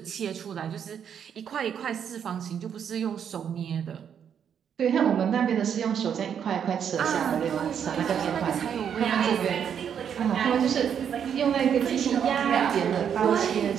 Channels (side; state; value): left; quieter; 8.2 dB